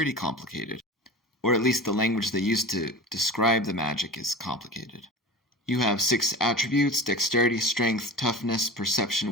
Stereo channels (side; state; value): both; normal; correlation 0.34